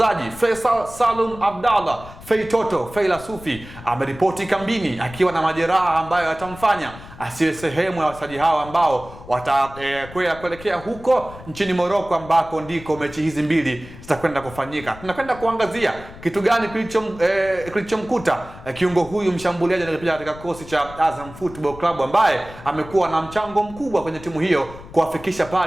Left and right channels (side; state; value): left; noise; rumble, 17 dB below the sound